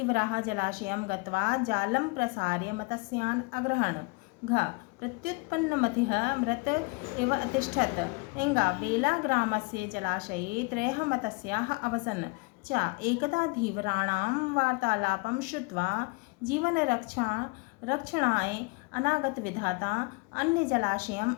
जलाशयं गत्वा जालं प्रसार्य मत्स्यान् अग्रहण। घ प्रत्युत्पन्नमतिः मृत इव अतिष्ठत्। एङ्गा बेलाग्रामस्य जलाशये 3 मत्स्याः अवसन्। च एकदा धीवराणां वार्तालापं श्रुत्वा जीवनरक्षणाय अनागतविधाता अन्यजलाशयम्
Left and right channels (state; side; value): quieter; right; 27.9 dB